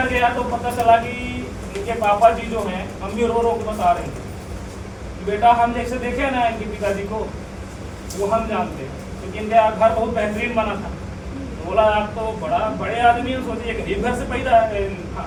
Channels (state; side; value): identical; both; correlation 1.00